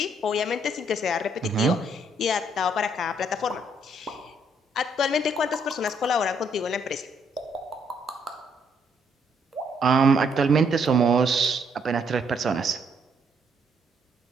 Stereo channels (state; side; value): normal; both; correlation 0.70